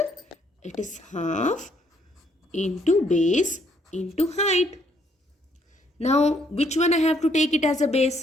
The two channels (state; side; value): normal; both; correlation 0.69